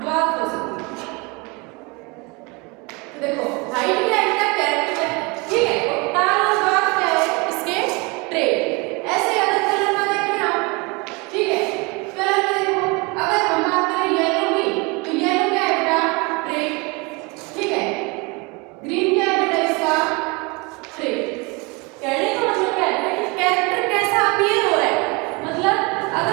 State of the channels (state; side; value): quieter; left; 28.0 dB